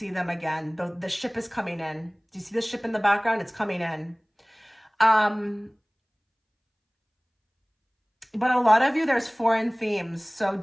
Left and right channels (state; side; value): identical; both; correlation 1.00